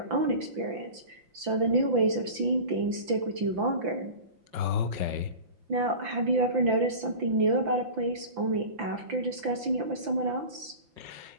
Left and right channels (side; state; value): left; late; 5.9 ms